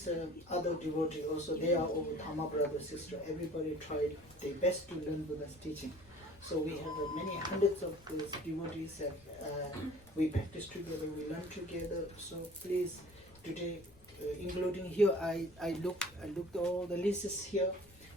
other devotees. Also, they are all Dhamma brother, sister. Everybody tried their best to learn Buddha's teaching. So we have many hundreds of those devotees that we practice together, we learn together. So please, today, including here, I looked all the lists here.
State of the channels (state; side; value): noise; left; rumble, 25 dB below the sound